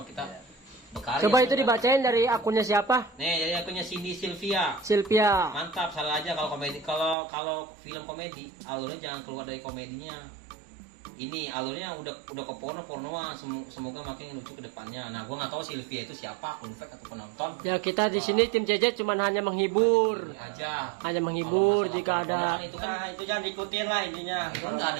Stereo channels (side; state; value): left; drops out; at 7.2 s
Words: kita berkarya. Coba itu dibacain dari akunnya siapa? Nih, jadi akunnya Cindy Sylvia. Sylvia. Mantap, salah aja kalau komedi. Kalau film komedi, alurnya jangan keluar dari komedinya. Ini alurnya udah ke pornoan. Semoga makin lucu ke depannya. Nah, gua nggak tahu Sylvia itu siapa, akun fake atau penonton. Ya kita di sini tim Cecet cuman hanya menghibur. Aja. Hanya menghibur Kalau jika masalah porno ada. kan itu kan Nah, itu jangan diikutin lah intinya. itu kan nggak